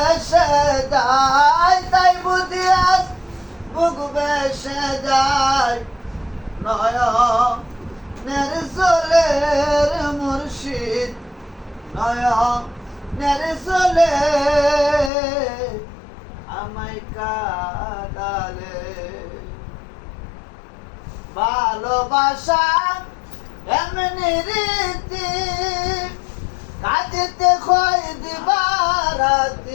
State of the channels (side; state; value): right; drops out; at 15.1 s